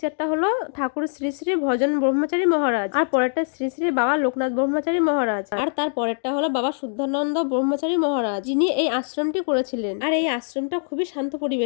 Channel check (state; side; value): silent; right; digital silence